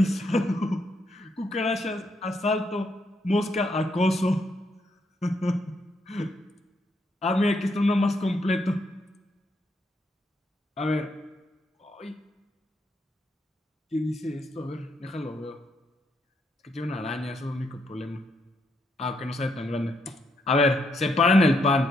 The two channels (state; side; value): normal; both; correlation 0.77